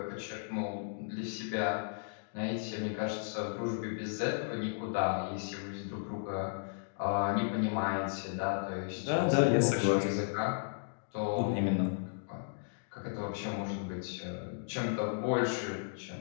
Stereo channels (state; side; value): silent; right; digital silence